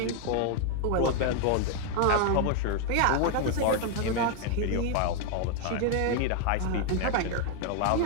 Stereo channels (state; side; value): different; both; correlation 0.00